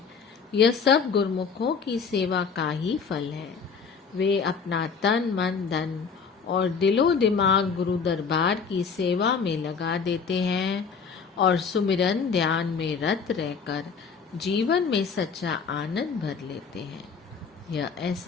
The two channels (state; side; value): quieter; right; 5.7 dB